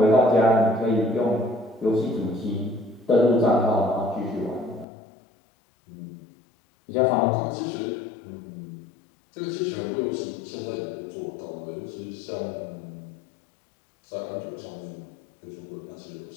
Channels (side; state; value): right; drops out; at 4.9 s